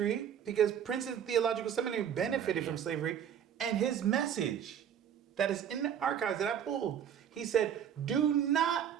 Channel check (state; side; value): quieter; left; 9.0 dB